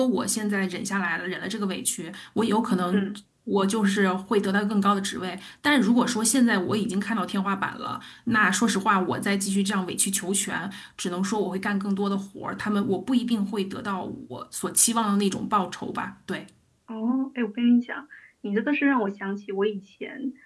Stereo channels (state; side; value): identical; both; correlation 1.00